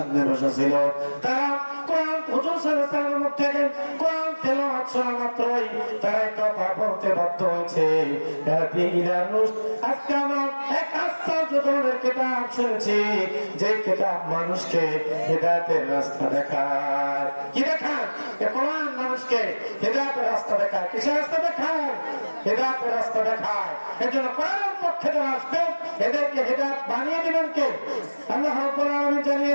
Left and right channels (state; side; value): inverted; both; correlation -1.00